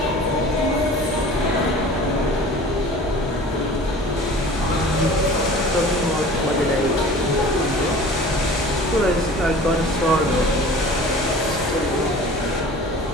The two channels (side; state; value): both; normal; correlation 0.42